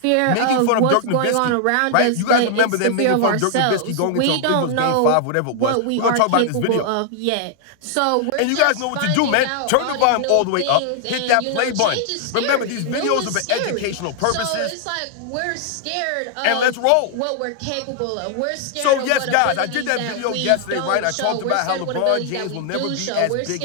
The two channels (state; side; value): different; both; correlation 0.00